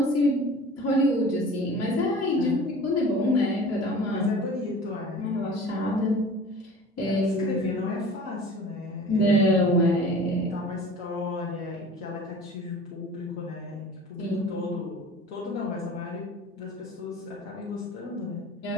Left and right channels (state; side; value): normal; both; correlation 0.42